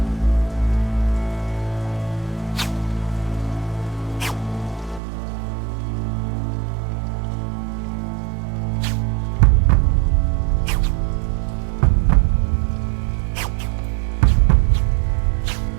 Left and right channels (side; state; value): left; drops out; at 5.0 s